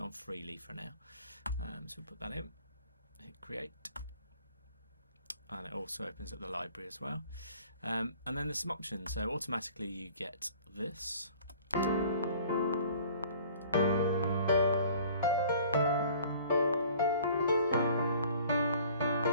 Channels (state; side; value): inverted; both; correlation -0.51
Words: on freely for now. So we'll put that in, hit create, and it also opens up the library as well. And then there's some options. So automatically you get this.